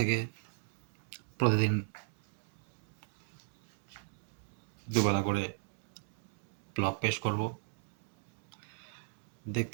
প্রতিদিন দুবেলা করে ব্লগ পেশ করব।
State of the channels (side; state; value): left; silent; 54 dB below the other